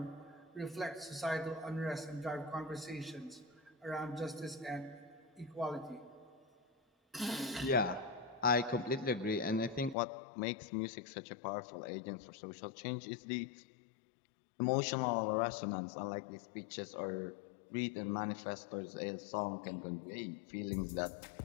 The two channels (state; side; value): drops out; right; at 10.0 s